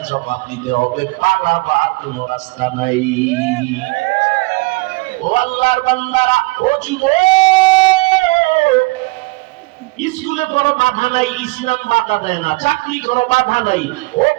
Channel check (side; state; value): left; quieter; 24.8 dB